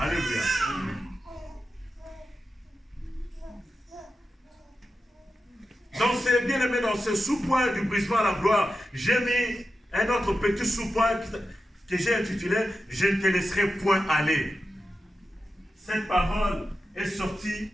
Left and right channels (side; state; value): both; normal; correlation 0.91